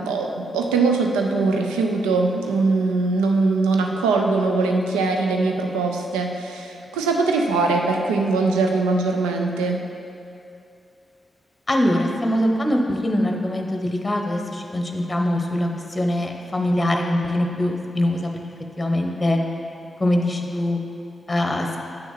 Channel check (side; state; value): both; normal; correlation 0.79